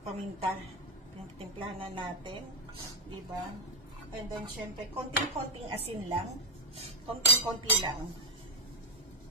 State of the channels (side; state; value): both; normal; correlation 0.04